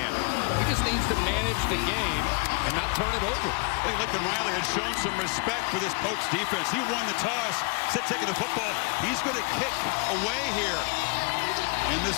He just needs to manage the game and not turn it over. I think Lincoln Riley has shown some respect for this Pokes defense. He won the toss, instead taking the football. He's going to kick away here. And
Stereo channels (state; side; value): quieter; right; 32.2 dB